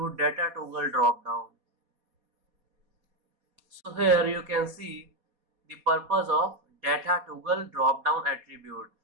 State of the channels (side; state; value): left; late; 4.2 ms